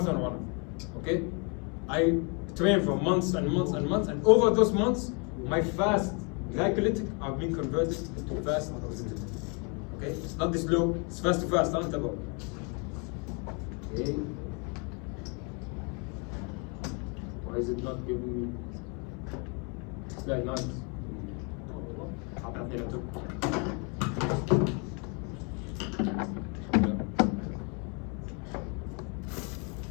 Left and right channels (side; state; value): right; quieter; 34.5 dB